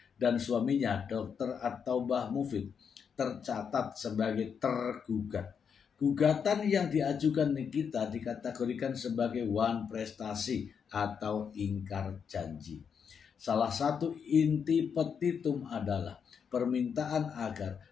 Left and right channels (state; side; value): quieter; right; 6.9 dB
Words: dan suaminya Dr. At-Taubah Mufid tercatat sebagai tergugat. Gugatan yang diajukan Nikita dikategorikan sebagai wan prestasi atau ingkar janji. Salah satu inti petitum adalah permintaan agar